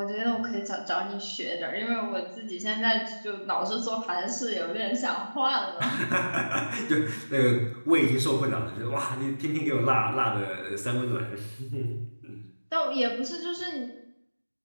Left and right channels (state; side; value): inverted; both; correlation -1.00